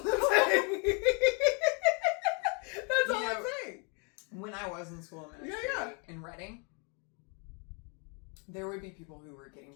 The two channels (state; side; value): quieter; right; 35.6 dB